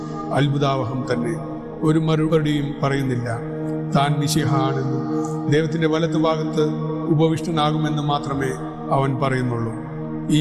അത്ഭുതാവഹം തന്നെ. ഒരു മറുപടിയും പറയുന്നില്ല. താൻ മിശിഹ ആണെന്നും ദൈവത്തിന്റെ വലത്തുഭാഗത്ത് ഉപവിഷ്ടനാകുമെന്ന് മാത്രമേ അവൻ പറയുന്നുള്ളൂ. ഈ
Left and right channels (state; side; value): identical; both; correlation 1.00